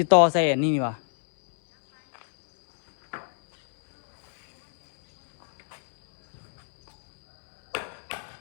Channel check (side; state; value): right; silent; 62 dB below the other